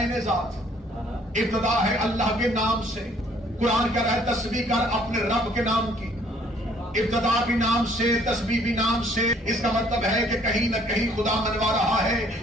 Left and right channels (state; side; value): normal; both; correlation 0.61